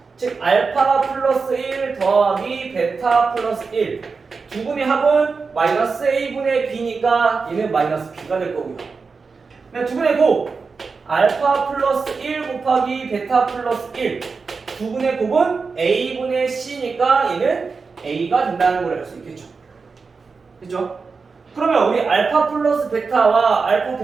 즉 알파 플러스 1 더하기 베타 플러스 1 두 분의 합은 마이너스 a분의 b니까 얘는 마이너스 b가 될 거고요. 두 분의 곱 알파 플러스 1 곱하기 베타 플러스 1 두 분의 곱은 a분의 c니까 얘는 a가 된다는 걸 알 수 있겠죠. 그렇죠? 그러면 우리 알파 플러스 베타와 알파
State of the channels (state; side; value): quieter; left; 4.7 dB